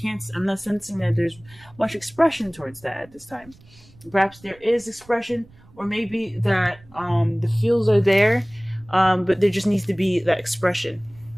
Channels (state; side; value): noise; right; rumble, 26 dB below the sound